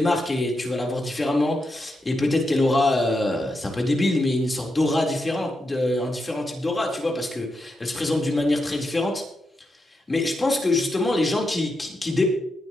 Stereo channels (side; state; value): both; normal; correlation 0.85